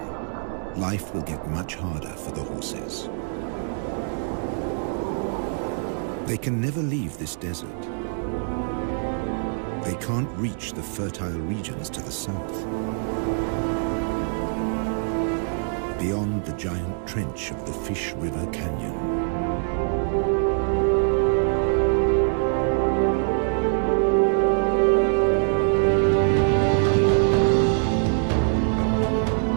life will get much harder for the horses. They can never leave this desert. They can't reach the fertile regions to the south. Beyond the giant trench of the Fish River Canyon.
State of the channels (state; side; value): silent; left; 58 dB below the other